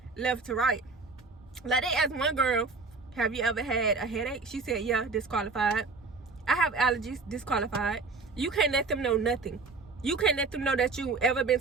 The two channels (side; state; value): left; quieter; 4.1 dB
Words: left to right. Like, they asked one girl, have you ever had a headache? She said, yeah, disqualified. I have allergies, disqualified. You can't let them know nothing. You can't let them know that you ever been